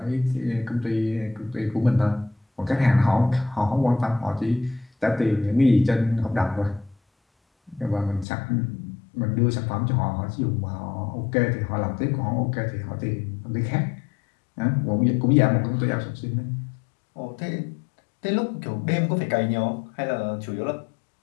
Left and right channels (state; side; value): drops out; right; at 8.2 s